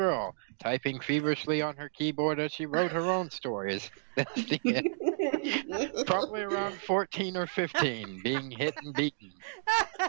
typing feverishly on her keyboard as she wrote her own stories. Probably around 14 or 15, being hit and beaten.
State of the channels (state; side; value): silent; left; digital silence